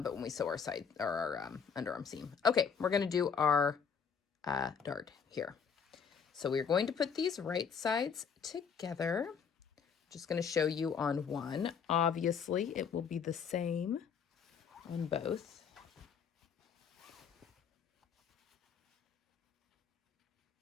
when we sew our side or our underarm seam. Okay, we're going to do our dart here. So we're going to put these right sides together. Just going to show you on one. Obviously, it will be the same on both.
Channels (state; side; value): quieter; right; 6.7 dB